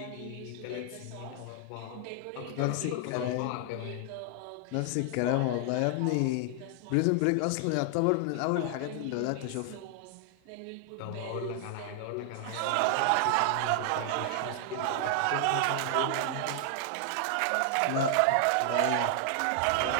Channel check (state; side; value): different; both; correlation 0.00